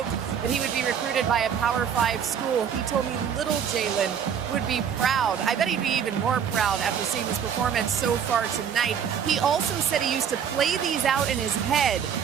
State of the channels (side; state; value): left; quieter; 7.9 dB